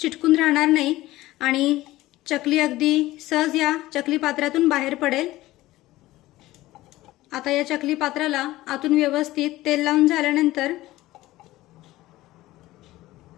राहणार नाही आणि चकली अगदी सहज या चकली पात्रातून बाहेर पडेल। आता या चकली पात्राला आतून व्यवस्थित तेल लावून झाल्यानंतर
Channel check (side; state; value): right; quieter; 17.1 dB